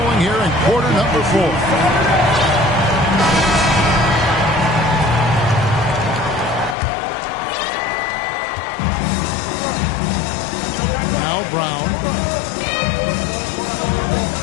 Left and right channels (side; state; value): right; drops out; at 6.8 s